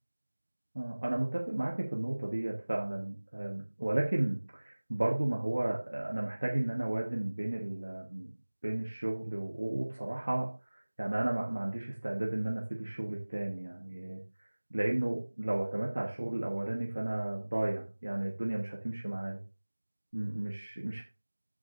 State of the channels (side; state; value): both; inverted; correlation -1.00